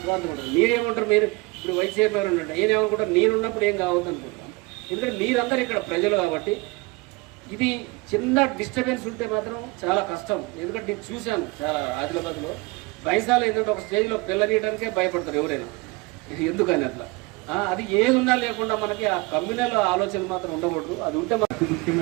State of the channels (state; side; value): quieter; left; 25.1 dB